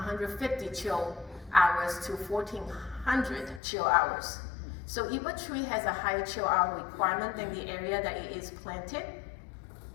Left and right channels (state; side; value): drops out; right; at 3.6 s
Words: chill hours to 1,400 chill hours. So if a tree has a high chill hour requirement than the area that it is planted,